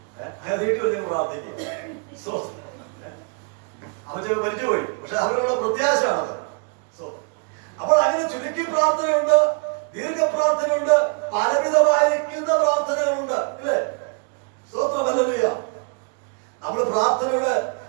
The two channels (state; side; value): quieter; left; 39.7 dB